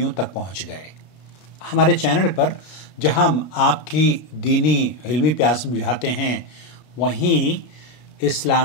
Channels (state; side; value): late; right; 32 ms